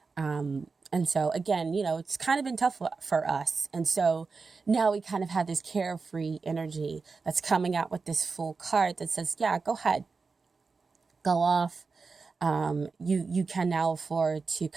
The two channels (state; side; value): quieter; left; 4.5 dB